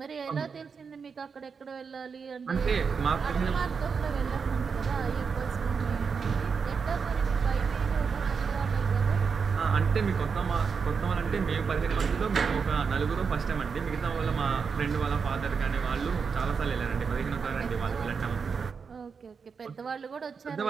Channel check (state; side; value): quieter; left; 5.7 dB